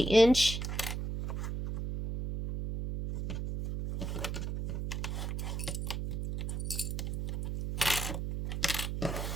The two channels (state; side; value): noise; right; hum, 3 dB below the sound